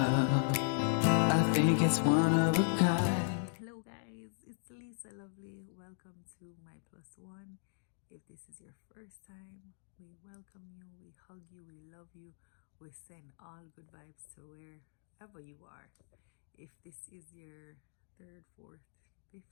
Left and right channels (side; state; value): right; silent; digital silence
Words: I think it's one of a kind. Hello guys, it's Lisa Lovely. Welcome to my plus one. If this is your first time, we welcome you, we hug you, we love you, we send all good vibes to wherever you are. If this is your third, fourth,